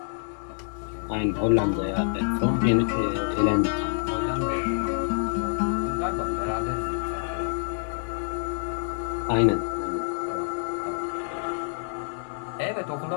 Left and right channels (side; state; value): right; silent; digital silence